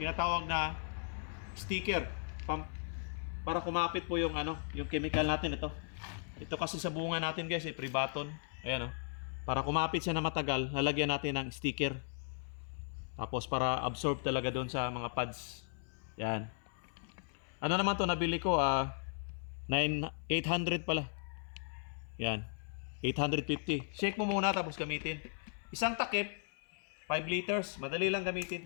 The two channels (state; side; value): silent; right; 53 dB below the other